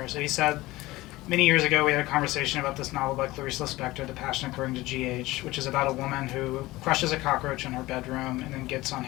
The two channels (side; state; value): right; quieter; 18.9 dB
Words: So he said, many years ago we had a conversation about this novel by Clarice Lispector, The Passion According to G.H., which is about a woman who crushes a cockroach in her bedroom and then gets on